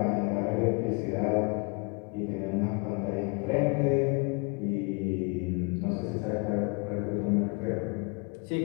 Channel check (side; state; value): right; quieter; 32.7 dB